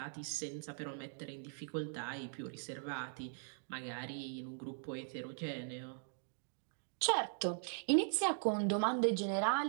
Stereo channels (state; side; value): silent; left; digital silence